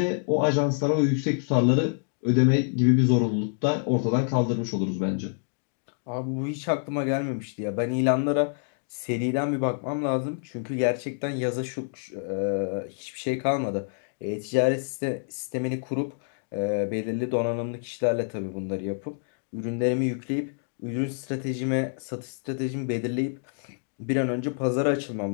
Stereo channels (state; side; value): silent; right; digital silence